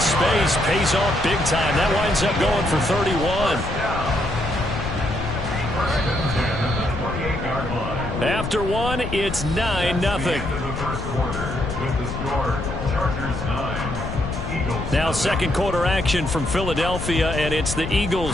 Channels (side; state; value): left; noise; rumble, 6 dB below the sound